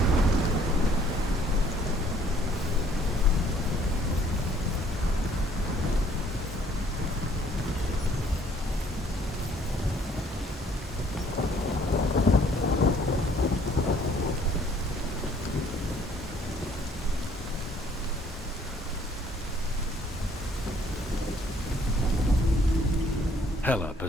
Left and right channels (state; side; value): normal; both; correlation 0.61